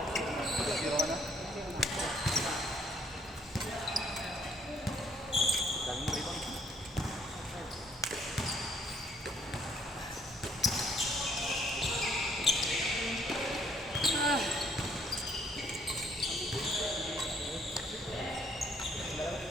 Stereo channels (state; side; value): normal; both; correlation 0.65